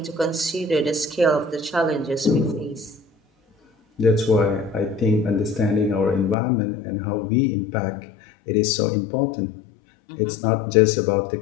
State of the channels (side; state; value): right; drops out; at 6.4 s